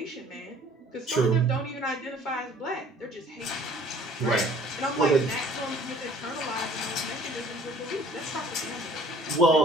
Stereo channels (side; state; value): both; normal; correlation 0.53